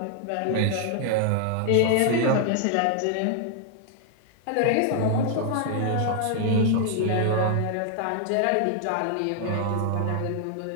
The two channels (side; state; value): both; different; correlation 0.00